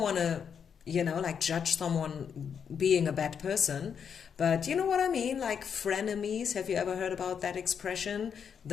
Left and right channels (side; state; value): right; quieter; 7.2 dB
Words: to like judge someone being a bad person. But you know what I mean? Like frenemies. Have you ever heard about that expression?